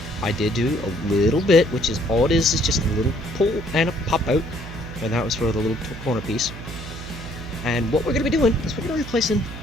I did do a little bit, which is all it is just a little pull and a pop out, and that was for the little corner piece. And what we're going to be doing is we're going to be replacing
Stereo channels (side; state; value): right; noise; hum, 11 dB below the sound